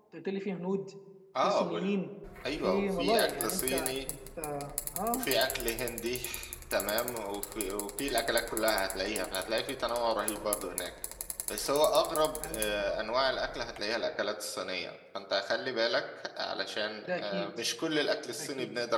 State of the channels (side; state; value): both; identical; correlation 1.00